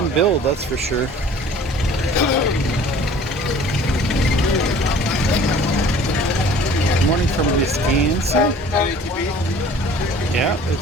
build, that's for sure. Good morning from Wisconsin. Yeah,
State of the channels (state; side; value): normal; both; correlation 0.49